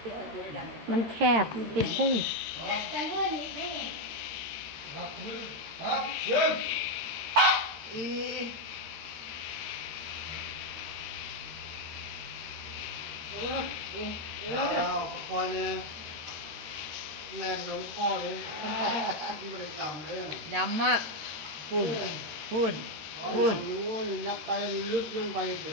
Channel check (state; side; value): late; left; 13 ms